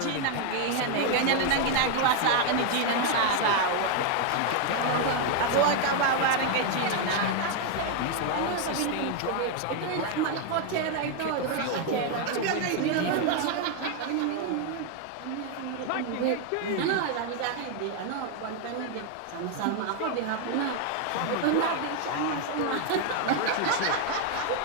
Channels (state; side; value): different; both; correlation 0.01